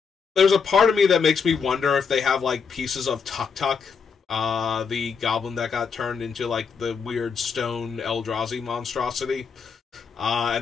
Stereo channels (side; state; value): right; quieter; 5.8 dB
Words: there's a part of me that makes me wonder if they have, like, pieces of Tuk Tuk, the goblin that got turned into, like, the weird stone Eldrazi monstrosity.